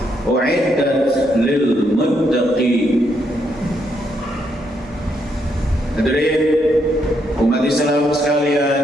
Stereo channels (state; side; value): normal; both; correlation 0.76